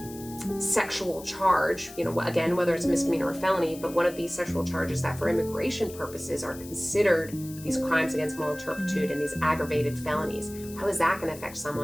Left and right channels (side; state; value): left; noise; hiss, 17 dB below the sound